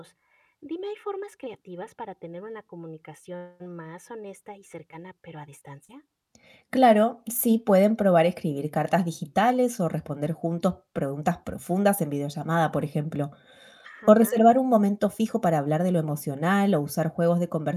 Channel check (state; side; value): identical; both; correlation 1.00